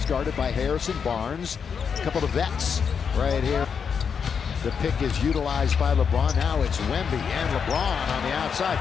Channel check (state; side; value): quieter; right; 6.6 dB